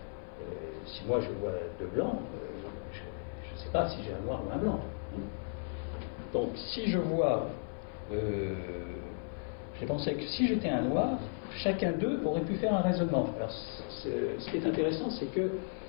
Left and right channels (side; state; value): right; silent; 55 dB below the other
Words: si moi je vois 2 blancs, je ne sais pas si j'ai un noir ou un blanc. Hein. Donc si je vois, j'ai pensé que si j'étais un noir, chacun d'eux aurait pu faire un raisonnement. Alors ce qui est intéressant, c'est que